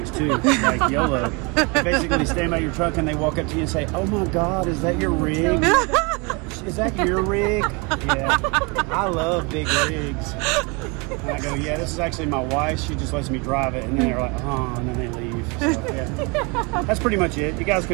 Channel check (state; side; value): quieter; left; 29.9 dB